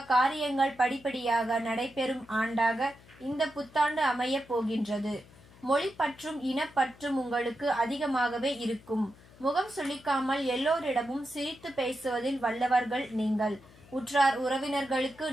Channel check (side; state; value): left; noise; hum, 24 dB below the sound